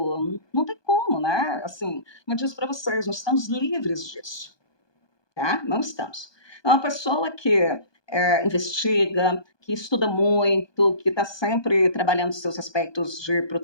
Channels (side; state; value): right; late; 1.2 ms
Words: não tem como, né? Assim, eu disse para vocês, nós estamos livres disso, tá? Não estamos. É uma pessoa que investiga, que estuda muito, que está sempre trabalhando seus aspectos de